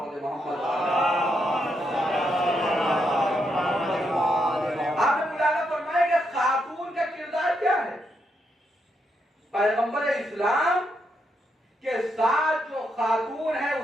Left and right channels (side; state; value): both; normal; correlation 0.80